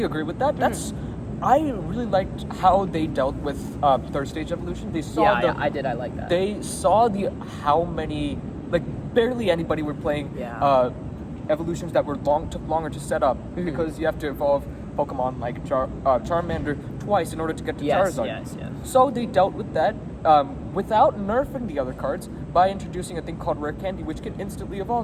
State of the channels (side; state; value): both; identical; correlation 1.00